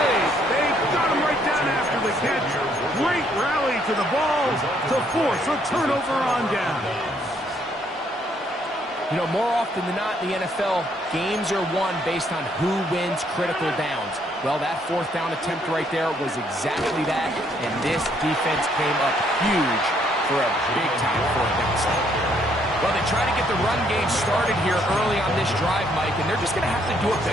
They got him right down after the catch. Great rally to the ball to force a turnover on down. You know, more often than not in the NFL, games are won based on who wins critical downs. Well, that 4th down attempt right there was exactly that, and this defense came up huge for a big-time 4th down stop. Well, they try to get the run game started here early on this drive, Mike, and they're just going to have to do a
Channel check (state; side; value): normal; both; correlation 0.69